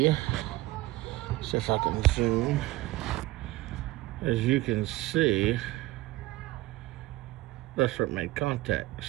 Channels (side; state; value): left; quieter; 18.5 dB